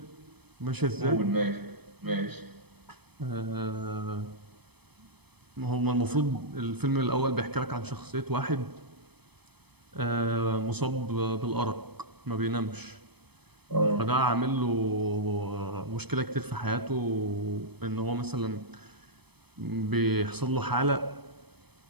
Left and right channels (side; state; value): left; late; 0.97 ms